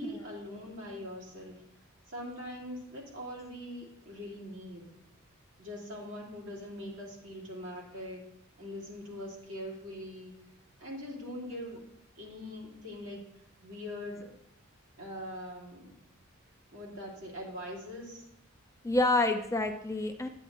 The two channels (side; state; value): both; normal; correlation 0.41